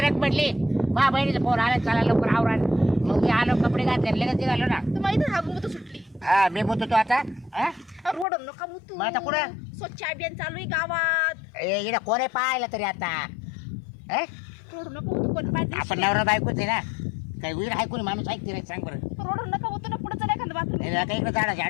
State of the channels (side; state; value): right; drops out; at 8.2 s